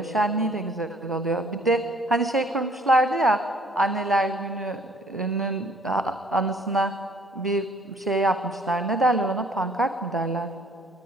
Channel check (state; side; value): normal; both; correlation 0.59